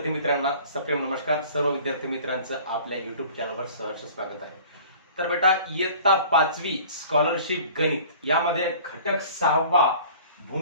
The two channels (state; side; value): inverted; both; correlation -0.47